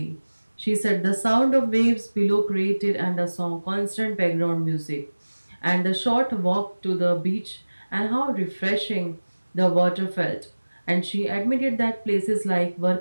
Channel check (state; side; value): inverted; both; correlation -1.00